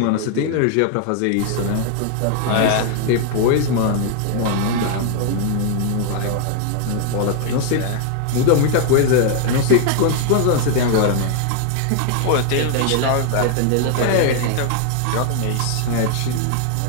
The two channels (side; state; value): both; different; correlation 0.00